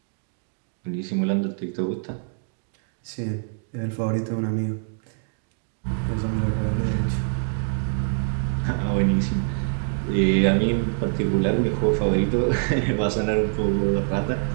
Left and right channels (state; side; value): silent; left; 62 dB below the other